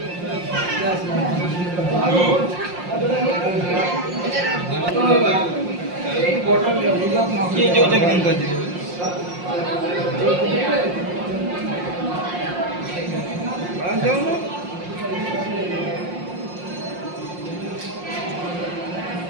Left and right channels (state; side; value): late; left; 5.6 ms